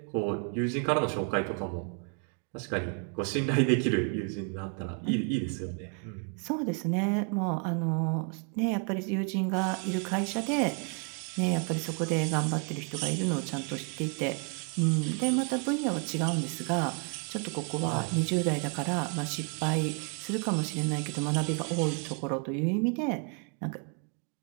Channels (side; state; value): left; quieter; 38.8 dB